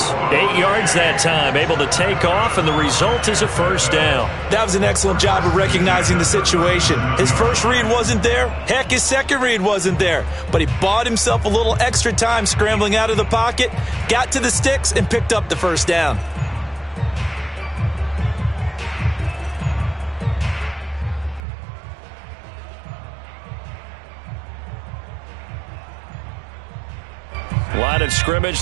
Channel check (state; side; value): drops out; left; at 21.5 s